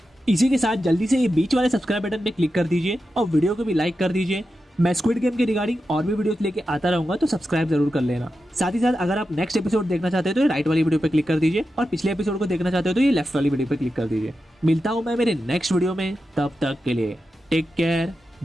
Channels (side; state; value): both; normal; correlation 0.90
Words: इसी के साथ जल्दी से ये बीच वाले सब्सक्राइब बटन पे क्लिक कर दीजिए और वीडियो को भी लाइक कर दीजिए। मैं स्क्विड गेम के रिगार्डिंग और भी वीडियोस लेके आता रहूंगा, तो सब्सक्राइब जरूर कर लेना। साथ ही साथ अगर आप नेक्स्ट एपिसोड देखना चाहते हो तो ये राइट वाली वीडियो पे क्लिक कर दीजिए, और पिछले एपिसोड को देखना चाहते हो तो ये लेफ्ट वाली वीडियो पे क्लिक कर दीजिए। मिलता हूं मैं मेरे नेक्स्ट वीडियो में, तब तक के लिए टेक केयर,